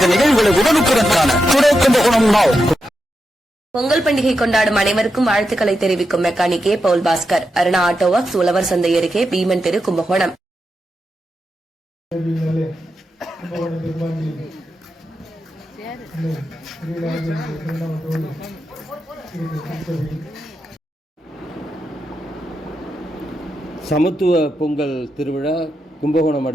நிகழ்வுகளை உடனுக்குடன் காண டுடே கும்பகோணம் நாவ். பொங்கல் பண்டிகை கொண்டாடும் அனைவருக்கும் வாழ்த்துக்களை தெரிவிக்கும் மெக்கானிக் ஏ பவுல் பாஸ்கர், அருணா ஆட்டோ ஒர்க்ஸ், உழவர் சந்தை அருகே, பீமன் தெரு, கும்பகோணம். சமத்துவ பொங்கல் திருவிழா கும்பகோணம்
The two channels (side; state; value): both; normal; correlation 0.87